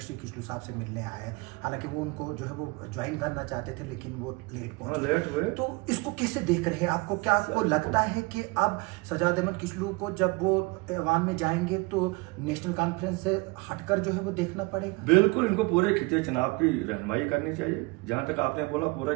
किशोर साहब से मिलने आए। हालांकि वो उनको जो है वो ज्वाइन करना चाहते थे, लेकिन वो लेट पहुंचे। तो इसको कैसे देख रहे हैं? आपको क्या आपको लगता है कि अब सजाद अहमद किचलू को जब वो ऐवान में जाएंगे तो नेशनल कॉन्फ्रेंस से हटकर जो है वो देखना पड़ेगा? बिल्कुल, इनको पूरे खिते चुनाव की रहनुमाई करनी चाहिए। जहां तक आपने बोला पूरे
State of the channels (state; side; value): quieter; left; 25.9 dB